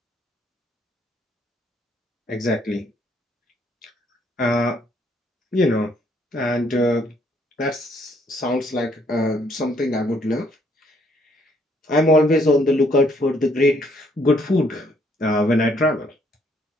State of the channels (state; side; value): normal; both; correlation 0.67